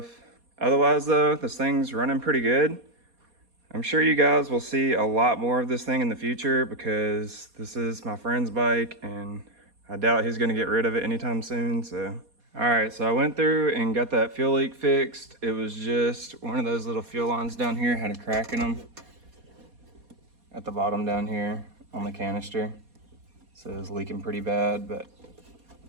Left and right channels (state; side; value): late; left; 4.2 ms